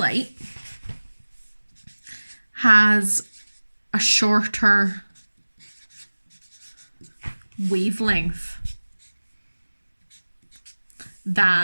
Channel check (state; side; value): inverted; both; correlation -1.00